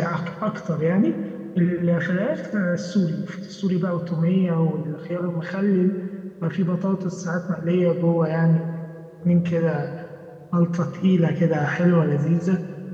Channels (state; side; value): identical; both; correlation 1.00